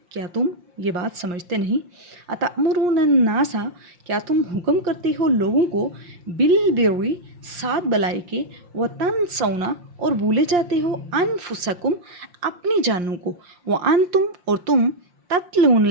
کیا تم یہ بات سمجھتے نہیں؟ اَتَأْمُرُونَ النَّاسَ، کیا تم حکم کرتے ہو لوگوں کو، بِالْبِرِّ، ساتھ بلائی کے، وَتَنْسَوْنَ، اور بھولے جاتے ہو، أَنفُسَكُمْ، اپنی جانوں کو، وَأَنْتُمْ، اور تم، تَتْلُونَ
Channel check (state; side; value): late; left; 5.7 ms